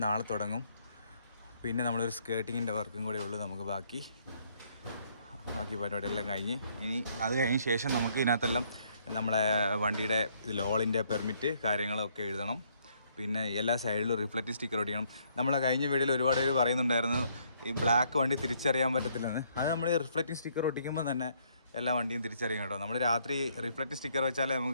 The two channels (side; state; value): both; inverted; correlation -0.68